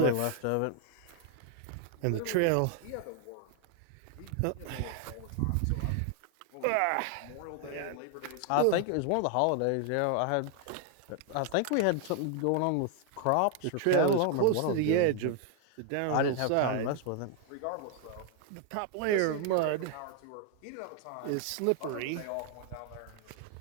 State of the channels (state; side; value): different; both; correlation 0.00